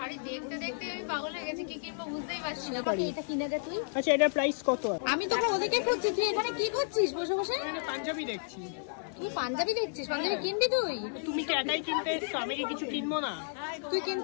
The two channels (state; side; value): silent; right; 56 dB below the other